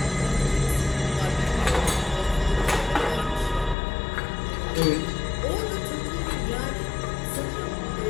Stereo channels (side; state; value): right; drops out; at 3.8 s